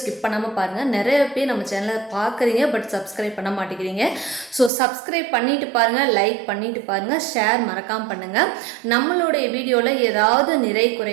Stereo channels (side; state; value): left; drops out; at 4.7 s